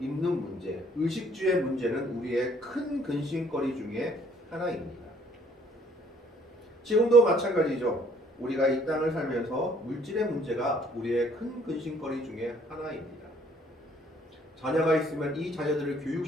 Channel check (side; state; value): both; normal; correlation 0.61